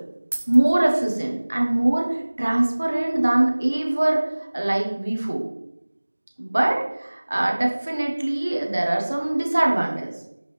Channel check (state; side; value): inverted; both; correlation -1.00